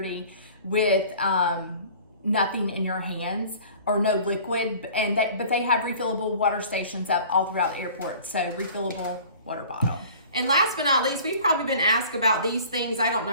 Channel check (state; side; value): inverted; both; correlation -0.46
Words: with nothing in your hands or no liquid. But they have refillable water stations up all throughout airports. So refillable water bottle. And last but not least, we've probably been asked about these things I don't